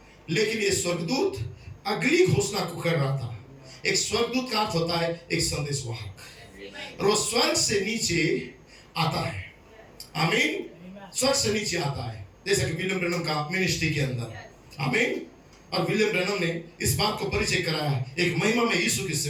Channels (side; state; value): both; identical; correlation 1.00